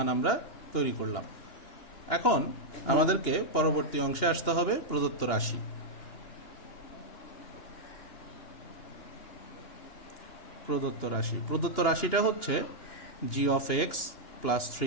আমরা তৈরি করলাম। এখন আমাদেরকে পরবর্তী অংশে আসতে হবে প্রদত্ত রাশি। প্রদত্ত রাশিটা হচ্ছে g of x plus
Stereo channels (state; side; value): late; right; 2.9 ms